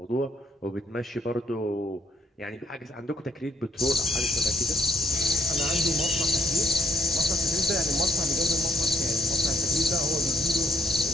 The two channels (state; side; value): normal; both; correlation 0.70